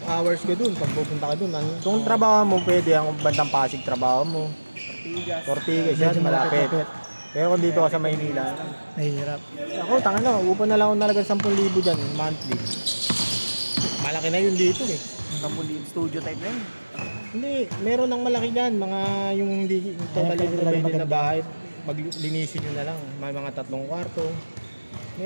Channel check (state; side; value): inverted; both; correlation -1.00